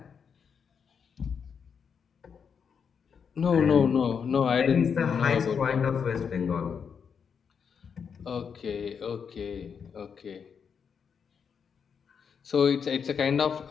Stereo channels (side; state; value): right; quieter; 6.7 dB